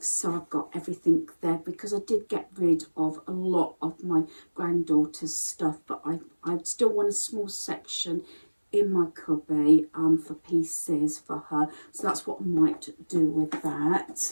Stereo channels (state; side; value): inverted; both; correlation -1.00